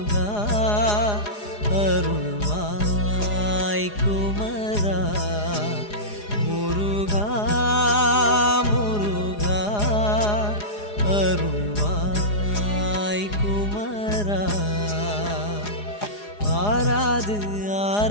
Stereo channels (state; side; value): late; right; 4.8 ms